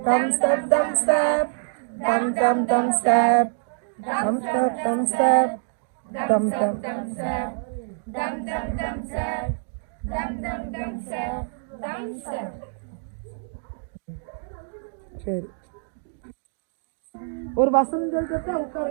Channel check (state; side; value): silent; left; digital silence